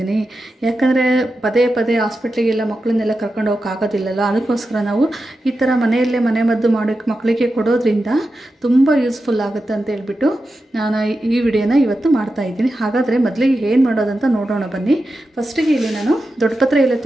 ಯಾಕಂದರೆ ಪದೇ ಪದೇ ಹಾಸ್ಪಿಟ್ಲಿಗೆಲ್ಲ ಮಕ್ಕಳನ್ನೆಲ್ಲ ಕರ್ಕೊಂಡು ಹೋಗೋಕ್ಕಾಗೋದಿಲ್ಲಲ್ಲ. ಅದಕ್ಕೋಸ್ಕರ ನಾವು ಈ ಥರ ಮನೆಯಲ್ಲೇ ಮನೆಮದ್ದು ಮಾಡೋಕ್ಕೆ ಮಕ್ಕಳಿಗೆ ಕೊಡೋದ್ರಿಂದ ತುಂಬ ಯೂಸ್ಫುಲ್ ಆಗುತ್ತೆ ಅಂತ ಹೇಳ್ಬಿಟ್ಟು ನಾನು ಈ ವಿಡಿಯೋನ ಇವತ್ತು ಮಾಡ್ತಾ ಇದ್ದೀನಿ. ಹಾಗಾದರೆ ಮೊದಲಿಗೆ ಏನು ಮಾಡೋದಂತ ನೋಡೋಣ ಬನ್ನಿ. ಫಸ್ಟಿಗೆ ಇಲ್ಲಿ ನಾನು ದೊಡ್ಡಪತ್ರೆ ಎಲೆ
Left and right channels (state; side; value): normal; both; correlation 0.90